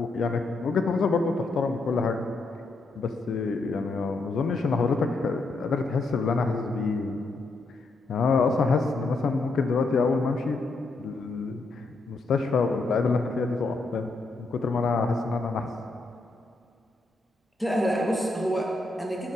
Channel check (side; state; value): right; quieter; 3.3 dB